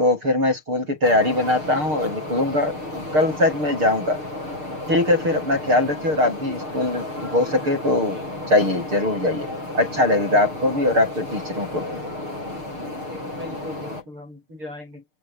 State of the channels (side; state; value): left; late; 6.6 ms